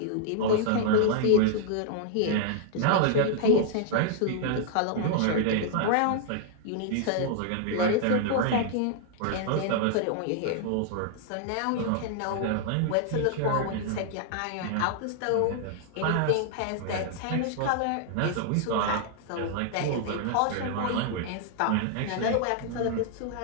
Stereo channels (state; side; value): different; both; correlation -0.01